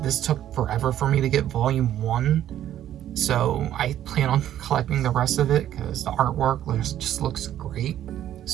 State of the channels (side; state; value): left; quieter; 11.6 dB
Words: This took forever for me to get volume 1, so I plan on collecting the rest of it because the artwork just looks great.